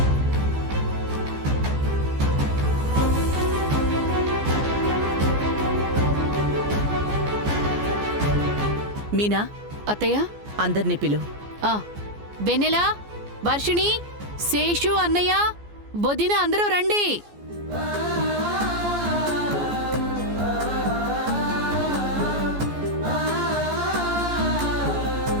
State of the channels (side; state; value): left; late; 14 ms